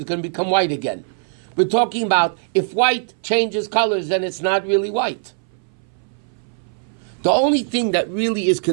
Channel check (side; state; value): left; silent; 61 dB below the other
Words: it's going to become white again. We're talking about if white changes colors, then it's not really white. The only thing that really is